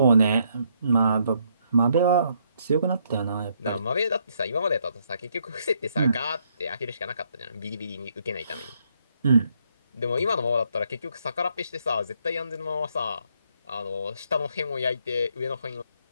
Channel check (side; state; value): both; inverted; correlation -0.72